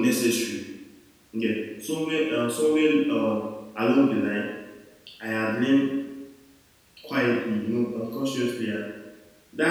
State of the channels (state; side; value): identical; both; correlation 1.00